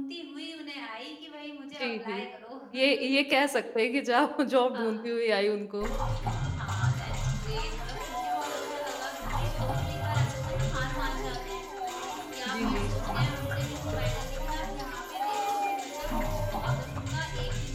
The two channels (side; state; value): both; identical; correlation 1.00